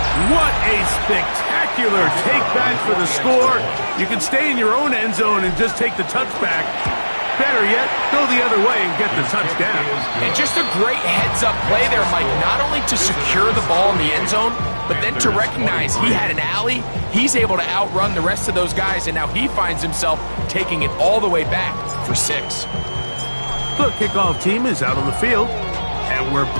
What a spectacular take back for the score. You can stay in your own end zone and just take the touchback. Better yet, go the other way and get the touchdown. And just a great heads-up play there, Mike, not only to secure the ball in the end zone, but then to recognize he had an alley. He's able to outrun the rest of those guys, and now he finds himself taking it all the way back for 6. The kickoff team is out on the field, and we're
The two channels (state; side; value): inverted; both; correlation -1.00